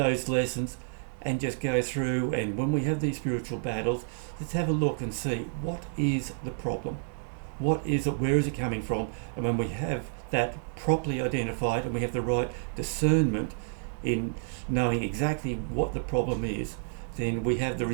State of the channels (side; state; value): left; silent; digital silence